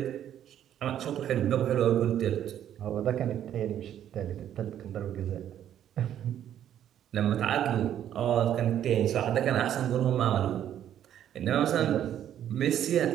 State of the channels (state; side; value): quieter; left; 10.6 dB